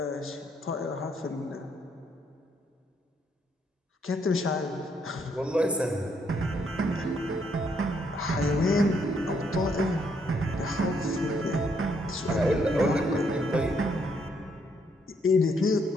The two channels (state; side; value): normal; both; correlation 0.72